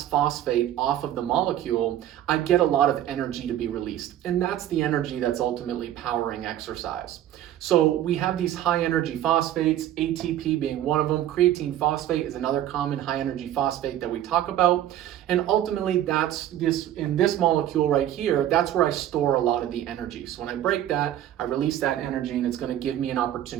phosphate off of the molecule, I get a lot of energy to be released. And that's the energy that's ultimately powering exercise. So we have these high energy phosphates, ATP being one of them. Creatine phosphate is another common high energy phosphate that we talk about. And ultimately that's in this molecule right here, that's where I store a lot of the energy. So when I break that, I release that energy and it's going to give me an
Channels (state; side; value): quieter; left; 12.0 dB